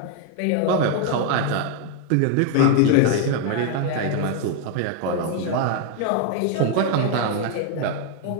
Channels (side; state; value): both; different; correlation 0.00